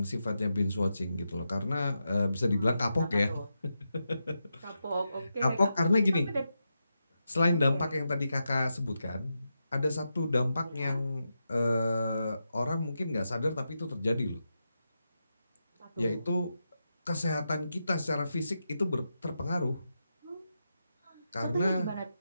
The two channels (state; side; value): inverted; both; correlation -0.87